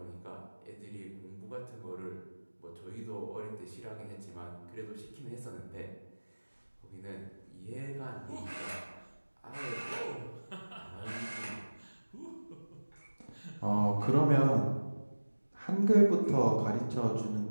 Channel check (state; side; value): inverted; both; correlation -1.00